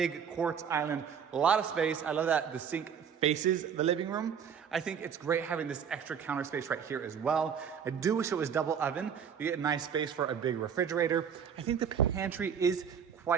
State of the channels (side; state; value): left; quieter; 7.5 dB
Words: quartz island, a lot of space. I love that the sink faces the living room. I think it's great having this extra counter space right here as well. I do wish it was double oven. You get a nice space for a big refrigerator. I think the pantry is